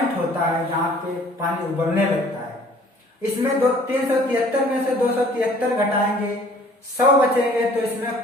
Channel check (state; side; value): normal; both; correlation 0.54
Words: होता है, जहां पे पानी उबलने लगता है। इसमें 373 में से 273 घटाएंगे, 100 बचेंगे। तो